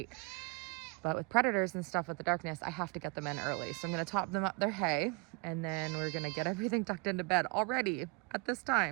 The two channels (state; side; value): quieter; left; 29.4 dB